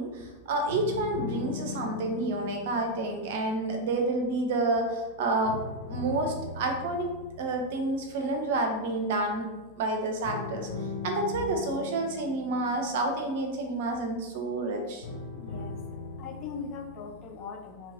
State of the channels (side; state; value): right; noise; hum, 26 dB below the sound